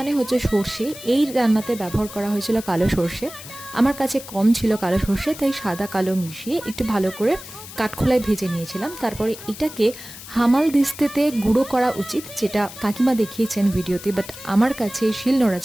হচ্ছে সর্ষে, এই রান্নাতে ব্যবহার করা হয়েছিল কালো সর্ষে। আমার কাছে কম ছিল কালো সর্ষে, তাই সাদা কালো মিশিয়ে একটু ভালো করে কাঠখোলায় ভেজে নিয়েছিলাম। তারপরে এটাকে হামাল দিস্তেতে গুঁড়ো করা উচিত, যেটা কাকিমা দেখিয়েছেন ভিডিওতে, বাট আমার কাছে শিলনোড়া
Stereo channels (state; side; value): noise; left; hiss, 14 dB below the sound